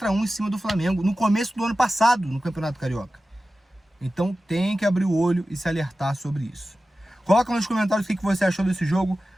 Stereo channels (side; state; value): both; normal; correlation 0.94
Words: em cima do Flamengo, no começo do ano passado, no Campeonato Carioca. Então tem que abrir o olho e se alertar sobre isso. Coloca nos comentários o que você achou desse jogo